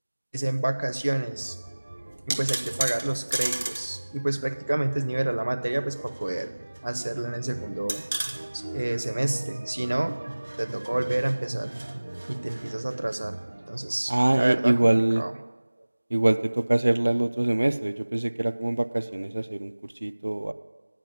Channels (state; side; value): inverted; both; correlation -1.00